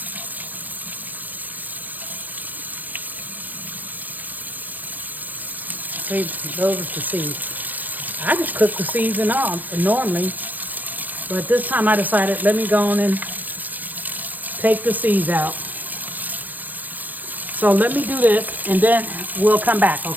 See, those are the seeds. I just cook the seeds and all normally, but this time I decided let me go on and take the seeds out. So let me do this, and then we'll come back,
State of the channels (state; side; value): late; left; 0.083 ms